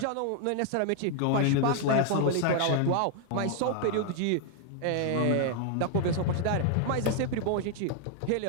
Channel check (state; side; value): different; both; correlation 0.00